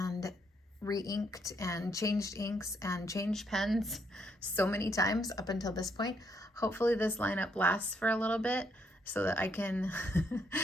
re-inked and changed inks and changed pens so many times up until this point. Hopefully this lineup lasts for a little bit so that I can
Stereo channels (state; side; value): normal; both; correlation 0.73